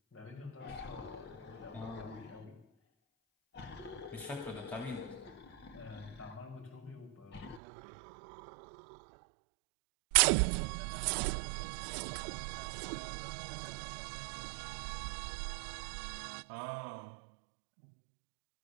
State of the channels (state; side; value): drops out; left; at 7.6 s